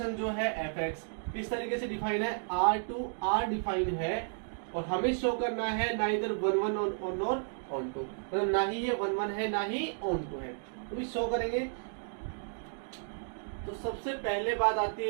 जो है fx किस तरीके से डिफाइन है, r to r डिफाइन है और हमें शो करना है नाइदर 1 1 ऑन और ऑन टू, मतलब ना ही ये 1 1 है ना ही ऑन टू है, तो भी शो करेंगे। तो सबसे पहले बात आती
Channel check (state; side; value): silent; left; digital silence